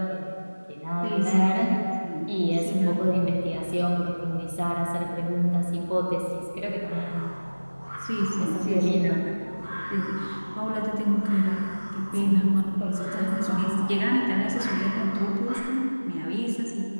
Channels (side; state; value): both; inverted; correlation -1.00